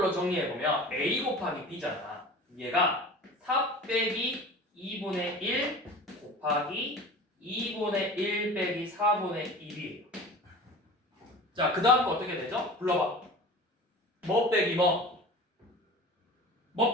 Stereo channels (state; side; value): normal; both; correlation 0.38